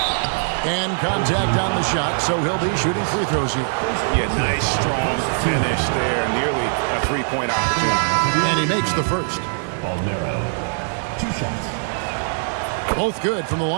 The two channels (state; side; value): silent; left; digital silence